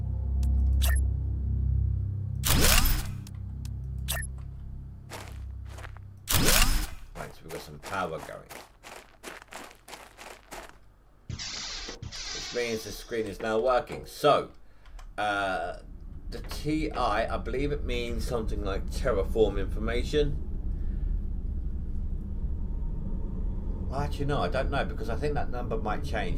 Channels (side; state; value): both; identical; correlation 1.00